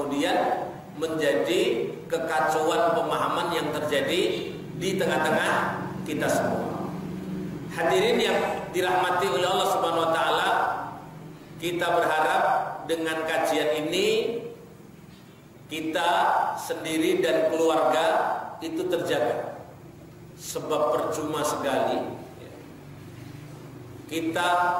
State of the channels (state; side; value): identical; both; correlation 1.00